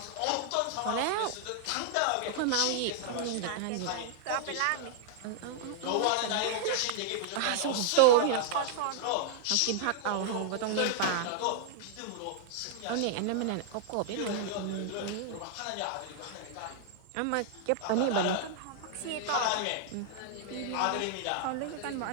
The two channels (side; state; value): both; different; correlation -0.01